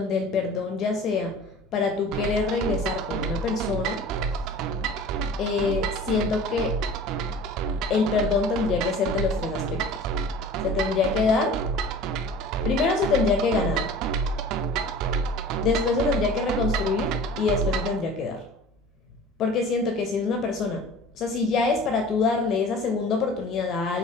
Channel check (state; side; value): normal; both; correlation 0.42